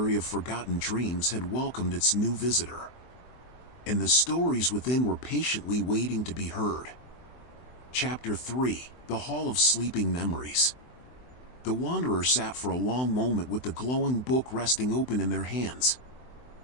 of forgotten dreams had welcomed its new visitor. And the stories within were patiently waiting to be heard. Chapter 3: The Hall of Sleeping Memories. The wanderer sat for a long moment with the glowing book resting open in their hands.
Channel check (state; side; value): late; right; 24 ms